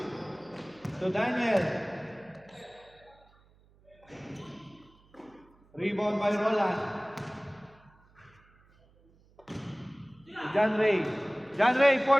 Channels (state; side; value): noise; right; hum, 30 dB below the sound